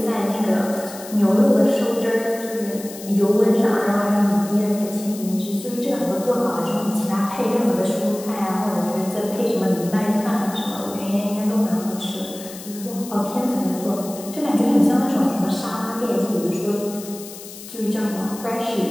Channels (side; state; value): left; noise; hiss, 14 dB below the sound